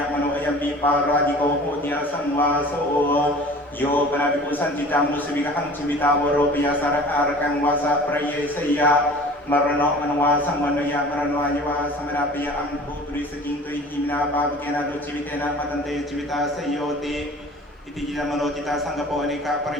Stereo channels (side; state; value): both; normal; correlation 0.44